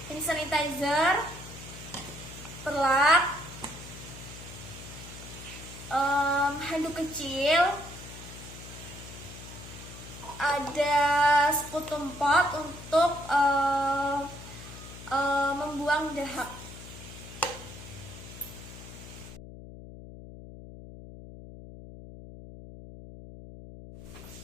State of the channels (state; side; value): noise; left; hum, 14 dB below the sound